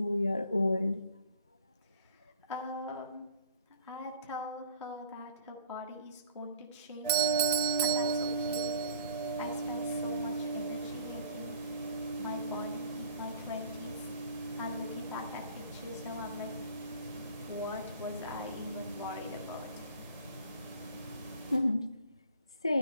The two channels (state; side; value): inverted; both; correlation -0.50